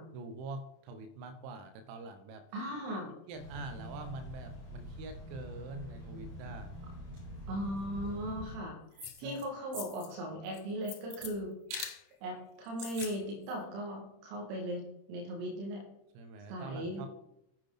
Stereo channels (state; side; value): late; left; 30 ms